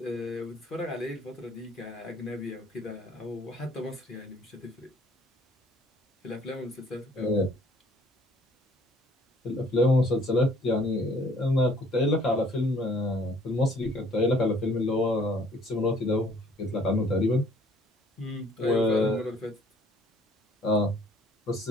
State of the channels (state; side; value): normal; both; correlation 0.59